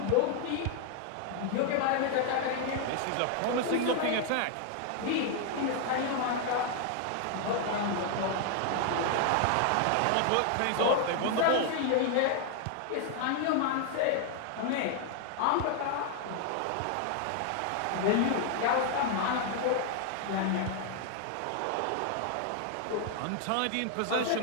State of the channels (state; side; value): different; both; correlation 0.00